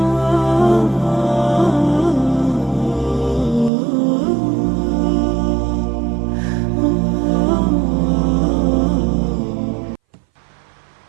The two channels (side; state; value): left; drops out; at 3.7 s